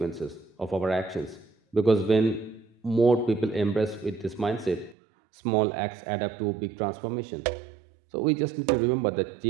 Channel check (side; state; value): left; drops out; at 5.0 s